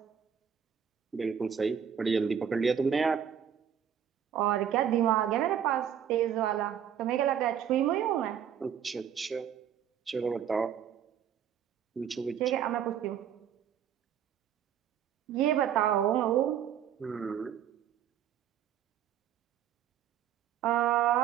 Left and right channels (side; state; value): left; quieter; 8.9 dB